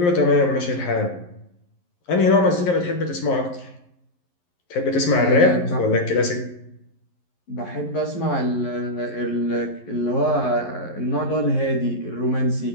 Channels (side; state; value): right; late; 11 ms